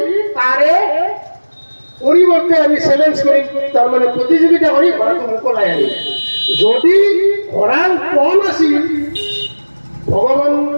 তাৰে পৰিৱৰ্তে আমি চেলেঞ্জ কৰিম, তাৰমানে প্ৰতিযোগিতা কৰি ঘোঁৰাটো মোকলাই আনিম। যদি ঘোঁৰাৰ পণ আছিল, ভগৱান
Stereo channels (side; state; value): both; inverted; correlation -1.00